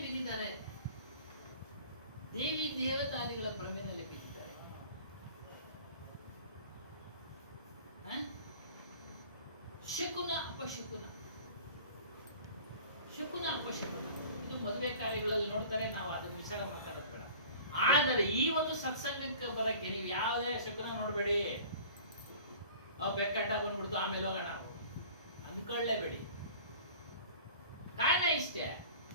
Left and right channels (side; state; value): both; inverted; correlation -0.44